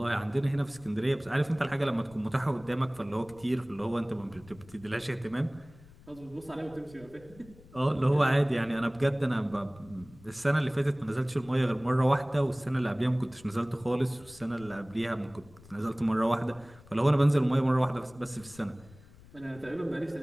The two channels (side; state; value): left; noise; rumble, 23 dB below the sound